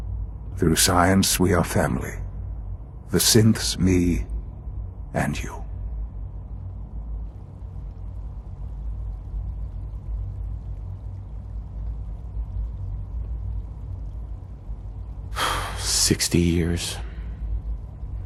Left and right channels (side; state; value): both; identical; correlation 1.00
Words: Through science, we are family. The synths, me, and you. "60 years.